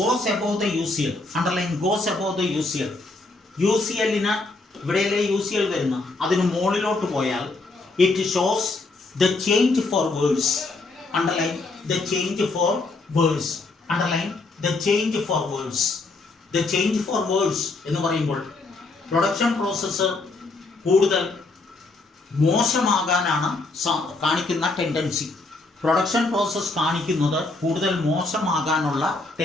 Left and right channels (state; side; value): quieter; right; 3.4 dB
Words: above the UCL, underline goes above the UCL, UCL-ന് ഇവിടെയല്ലേ UCL വരുന്ന, അതിന് മുകളിലോട്ട് പോയാൽ it shows the change for words, underline the change for words, underline the change for words. The change for words എന്ന് പറയുമ്പോൾ production process കൂടുതൽ മോശമാകാനാണ് കാണിക്കുന്ന tendency. Production process കാണിക്കുന്നത് കൂടുതൽ മോശമാകാനുള്ള